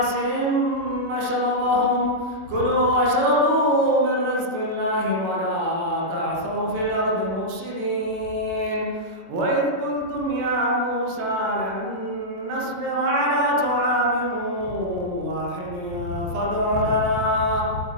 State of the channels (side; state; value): left; late; 23 ms